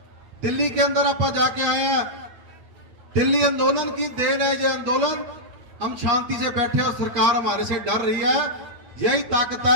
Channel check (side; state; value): left; late; 8.6 ms